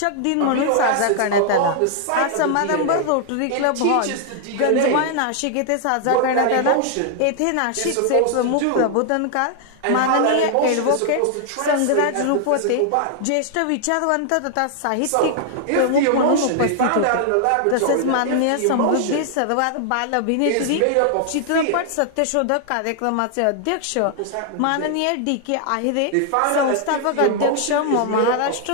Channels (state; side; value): different; both; correlation 0.00